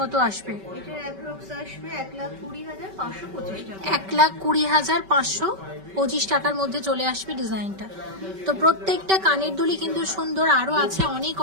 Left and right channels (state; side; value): late; left; 5.2 ms